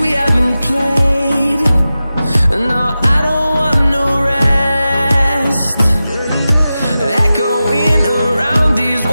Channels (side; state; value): both; inverted; correlation -0.94